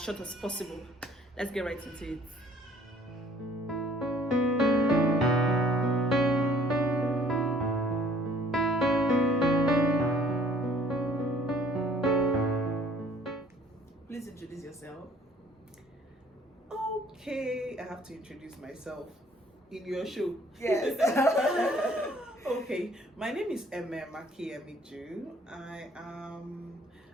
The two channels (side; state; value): both; normal; correlation 0.57